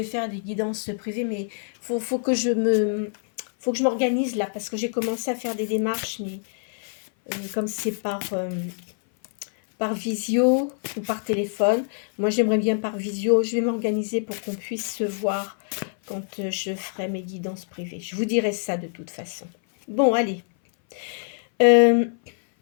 faire des guidances privées. Mais faut que je m'organise là, parce que j'ai commencé à faire des démarches, mais comme c'est par visio ou par téléphone. Moi, j'aimerais bien par visio. Je vais m'organiser pour qu'on puisse se voir quand je ferai mes guidances privées. Je vous dirai ça de toute façon. Bon, allez.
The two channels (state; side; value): silent; right; 58 dB below the other